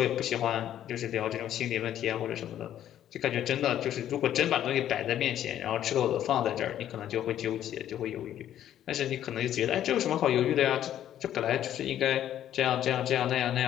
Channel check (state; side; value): quieter; right; 11.3 dB